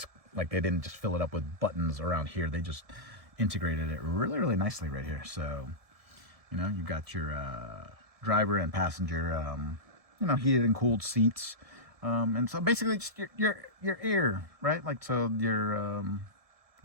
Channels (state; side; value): late; left; 1.7 ms